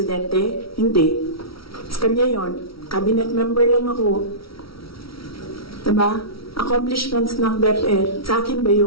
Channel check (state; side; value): late; right; 0.75 ms